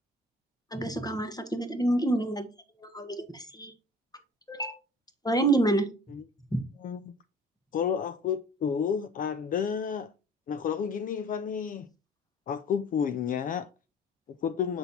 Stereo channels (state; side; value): normal; both; correlation 0.48